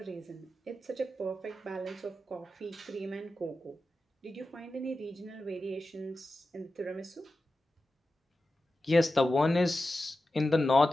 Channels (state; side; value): normal; both; correlation 0.92